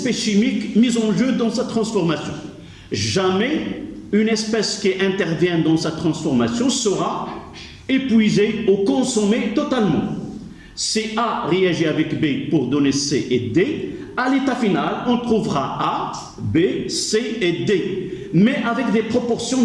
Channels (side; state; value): both; identical; correlation 1.00